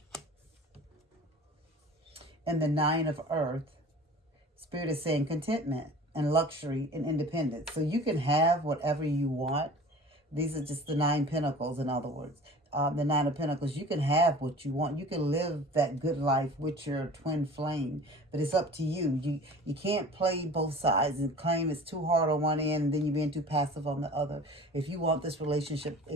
And the 9 of Earth, Spirit is saying contentment and luxury and independence. So you can have whatever you want. These are just the 9 pentacles, in other words. The 9 of Pentacles, you can have what you want. You can live that good life with your twin flame. But it's up to you. You can't play both sides and claim it's too hard on one end and then you're being too passive on the other. If you want this relationship,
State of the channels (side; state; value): both; normal; correlation 0.42